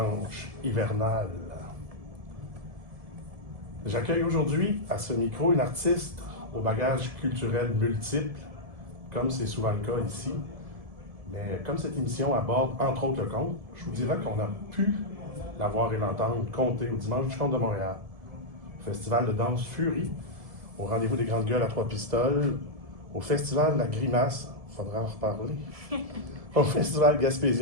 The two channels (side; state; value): left; late; 1.7 ms